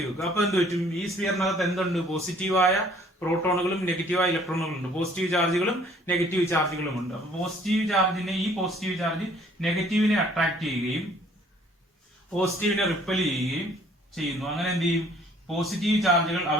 വെക്കുക. അപ്പൊ എന്ത് പറ്റും, ഈ സ്ഫിയറിനകത്ത് എന്തുണ്ട്, പോസിറ്റീവായ പ്രോട്ടോണുകളും നെഗറ്റീവായ ഇലക്ട്രോണുകളും ഉണ്ട്. പോസിറ്റീവ് ചാർജുകളും നെഗറ്റീവ് ചാർജുകളും ഉണ്ട്. അപ്പൊ ഈ പോസിറ്റീവ് ചാർജ് നെഗറ്റീവിനെ അട്രാക്ട് ചെയ്യുകയും പോസിറ്റീവിനെ റിപ്പൽ ചെയ്യുകയും ചെയ്യുന്നു. അങ്ങനെ എന്ത് ചെയ്യും, പോസിറ്റീവ് ചാർജുകൾ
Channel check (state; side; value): normal; both; correlation 0.58